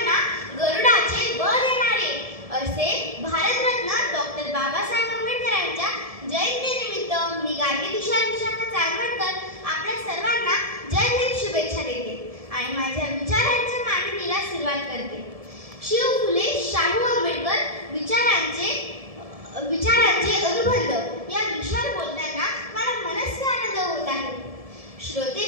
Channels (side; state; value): left; late; 1.7 ms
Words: गरुडाचे बळ देणारे असे भारतरत्न डॉक्टर बाबासाहेब आंबेडकरांच्या जयंतीनिमित्त मी गार्गी तुषार विशाखा चांदवडकर आपल्या सर्वांना जय हिंद शुभेच्छा देते आणि माझ्या विचारांच्या मांडणीला सुरुवात करते. शिव फुले शाहू आंबेडकर विचारांचे अनुबंध या विषयावर बोलताना मला मनस्वी आनंद होत आहे. श्रोते